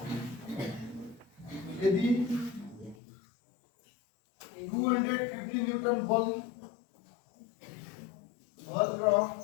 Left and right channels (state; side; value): drops out; right; at 3.0 s